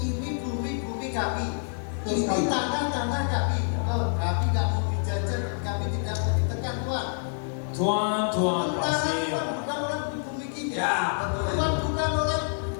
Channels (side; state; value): right; silent; digital silence